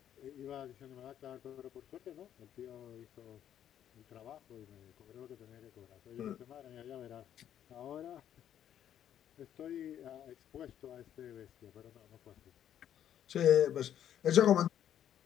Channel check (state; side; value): quieter; right; 10.3 dB